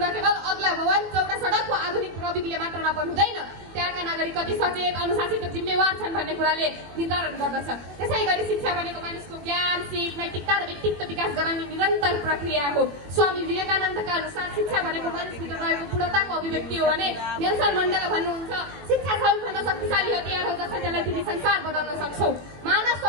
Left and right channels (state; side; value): late; left; 21 ms